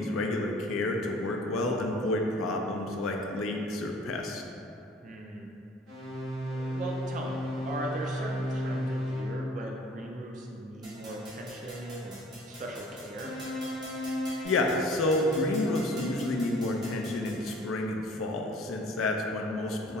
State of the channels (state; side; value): normal; both; correlation 0.51